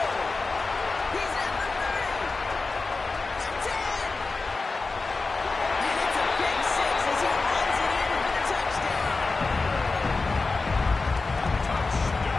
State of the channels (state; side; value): quieter; right; 3.9 dB